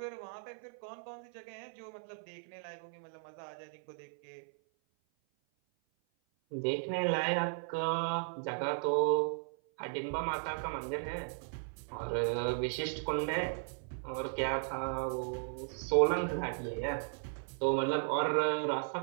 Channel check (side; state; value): left; silent; 54 dB below the other